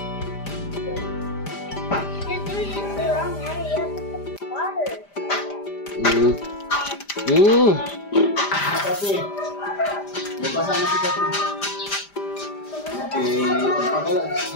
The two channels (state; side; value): late; right; 5.0 ms